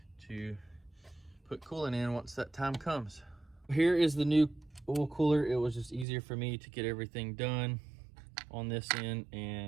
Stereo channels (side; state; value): left; drops out; at 6.1 s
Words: to put coolant in once that time comes. Here is the new oil cooler. It was just easier for me to get everything done on this end